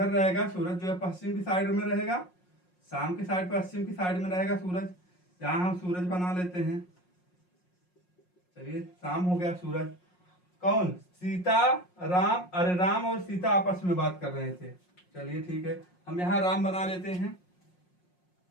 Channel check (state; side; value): late; right; 5.6 ms